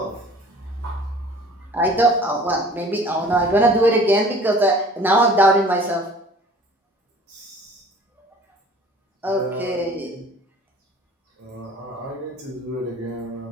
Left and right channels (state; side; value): normal; both; correlation 0.48